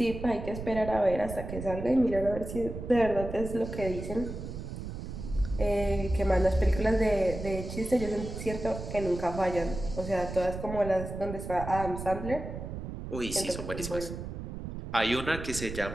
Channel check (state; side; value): noise; right; rumble, 8 dB below the sound